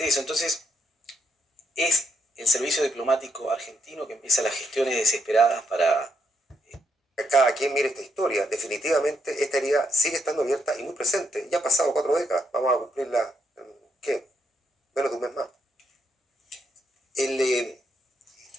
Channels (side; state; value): both; normal; correlation 0.77